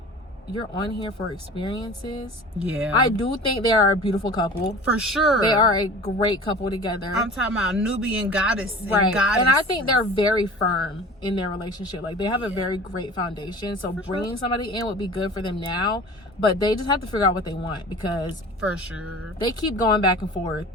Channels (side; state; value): both; normal; correlation 0.40